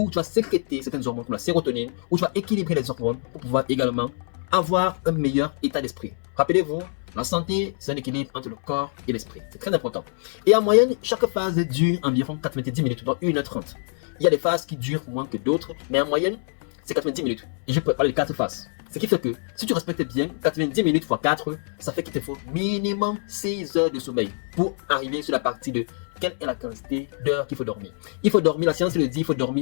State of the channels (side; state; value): right; silent; 59 dB below the other